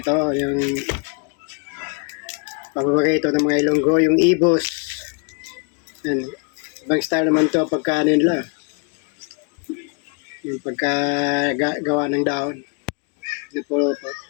yung paborito ng mga Ilonggo, yung ibos. Ayan. Ibang style naman to pagka ano nila. Yung pagka gawa ng dahon. Nipulo-po.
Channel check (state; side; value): quieter; right; 37.7 dB